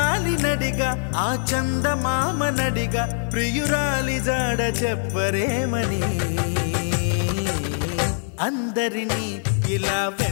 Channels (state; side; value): silent; right; 61 dB below the other